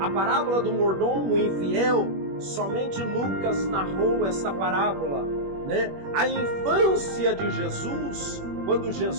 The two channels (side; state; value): left; late; 21 ms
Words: A parábola do mordomo infiel, somente Lucas narrou essa parábola, né? A infância de Jesus, quando